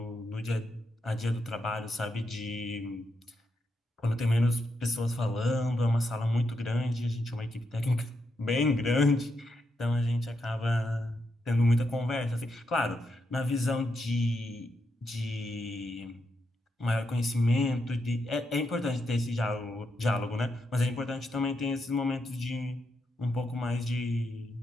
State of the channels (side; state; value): both; normal; correlation 0.83